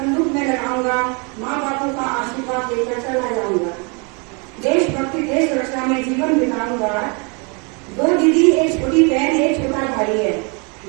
में लगाऊंगा, माँ बापों का आशीर्वाद लेकर चला जाऊंगा, देशभक्ति देश रक्षा में जीवन बिताऊंगा। 2 दीदी, एक छोटी बहन, एक छोटा भाई है,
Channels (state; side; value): quieter; left; 33.0 dB